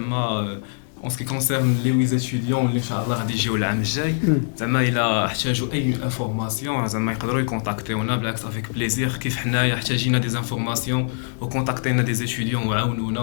en ce qui concerne les 8 étudiants اللي ان شاء الله غادي يجيو العام الجاي, زعما الا احتاجوا اي انفورماسيون زعما يقدروا يكونتاكتيونا بالعكس افيك بليزير, كيف حنايا احتاجينا دي انفورماسيون وكونتاكتينا دي étudiants وعاونونا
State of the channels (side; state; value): right; silent; digital silence